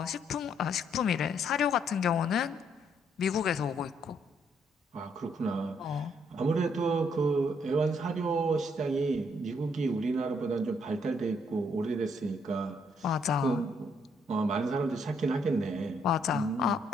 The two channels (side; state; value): both; normal; correlation 0.71